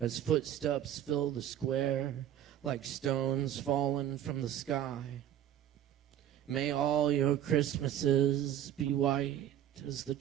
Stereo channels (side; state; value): left; quieter; 11.1 dB